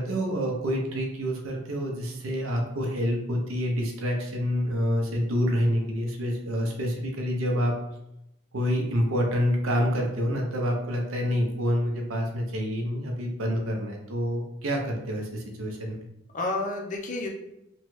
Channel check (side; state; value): both; normal; correlation 0.71